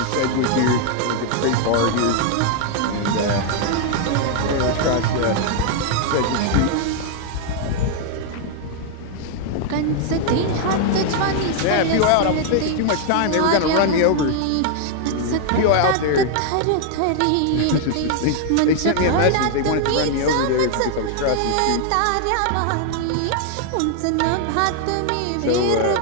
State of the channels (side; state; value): both; different; correlation 0.00